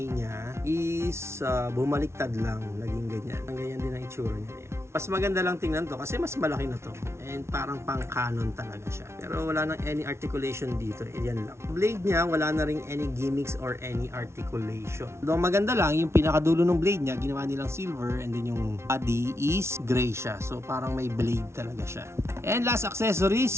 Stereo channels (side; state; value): left; late; 0.13 ms